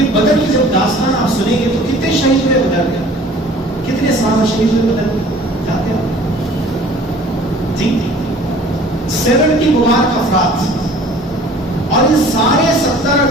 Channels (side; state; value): both; normal; correlation 0.50